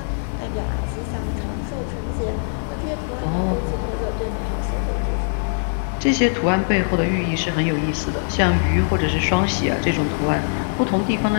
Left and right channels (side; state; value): right; silent; digital silence